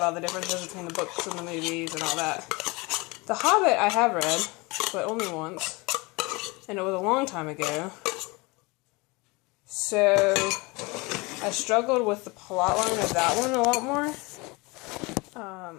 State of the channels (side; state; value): right; quieter; 25.6 dB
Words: all the differences between the books and the movies and all that. The Hobbit I have read, but only once, and it was a long time ago. So I struggled with the plot line of that one a lot more.